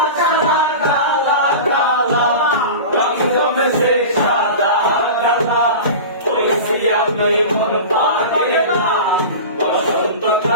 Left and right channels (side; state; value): both; inverted; correlation -0.31